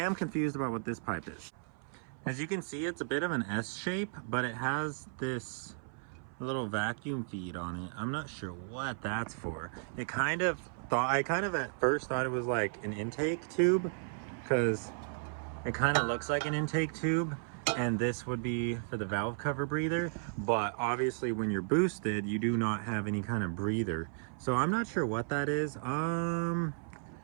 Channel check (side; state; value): left; silent; 55 dB below the other